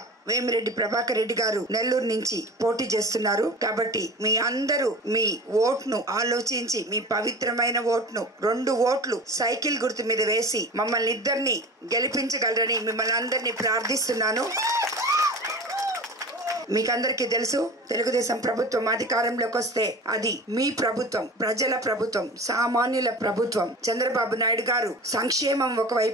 వేమిరెడ్డి ప్రభాకర్ రెడ్డి గారు నెల్లూరు నుంచి పోటీ చేస్తున్నారు. కాబట్టి మీ అందరూ మీ ఓట్ను ఆలోచించి, మీ పవిత్రమైన ఓట్ను 2 ఓట్లు సైకిల్ గుర్తు మీద వేసి మమ్మల్ని ఇద్దరిని గెలిపించగలరని మిమ్మల్ని అందరినీ ప్రార్థిస్తున్నాను. మీకందరికీ తెలుసు, తెలుగుదేశం ప్రభుత్వం అధికారంలోకి వస్తే అది మీ ప్రభుత్వం, ప్రజల ప్రభుత్వం, సామాన్యుల ప్రభుత్వం. చంద్రబాబు నాయుడు గారు సంక్షేమం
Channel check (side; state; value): both; normal; correlation 0.35